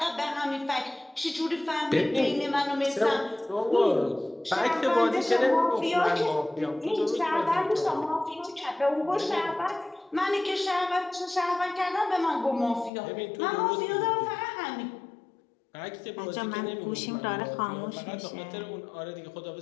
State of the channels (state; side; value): drops out; right; at 12.9 s